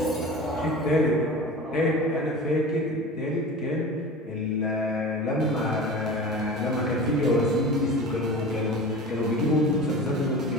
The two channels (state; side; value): normal; both; correlation 0.35